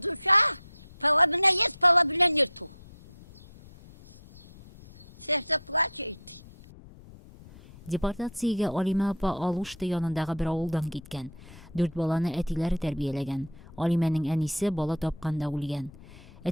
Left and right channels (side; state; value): left; noise; rumble, 20 dB below the sound